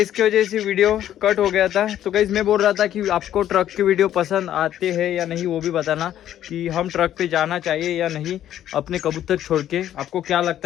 वजह से वीडियो कट हो गया था। तो गाइज मैं बोल रहा था कि आपको ट्रक की वीडियो पसंद आते हैं या नहीं वो भी बताना, कि हम ट्रक पे जाना चाहिए या नहीं अपने कबूतर छोड़ के। आपको क्या लगता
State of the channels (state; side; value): quieter; right; 11.5 dB